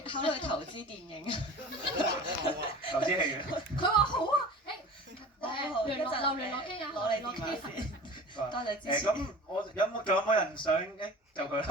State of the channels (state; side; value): normal; both; correlation 0.39